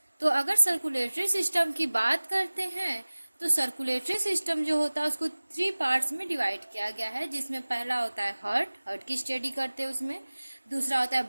तो अगर सर्कुलेटरी सिस्टम की बात करते हैं तो सर्कुलेटरी सिस्टम जो होता है उसको 3 पार्ट्स में डिवाइड किया गया है, जिसमें पहला होता है हार्ट की स्टडी करते हैं उसमें। दूसरा होता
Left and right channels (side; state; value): both; inverted; correlation -1.00